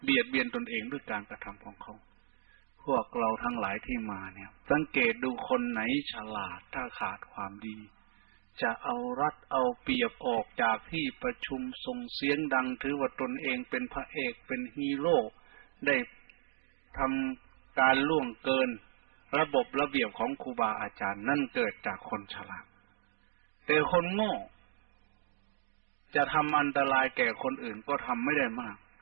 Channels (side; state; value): left; silent; digital silence